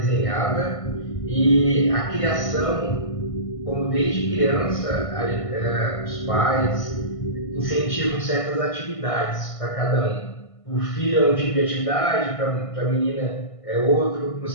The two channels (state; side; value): late; right; 1.6 ms